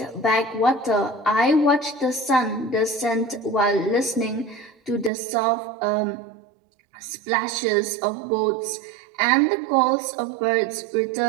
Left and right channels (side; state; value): left; drops out; at 5.1 s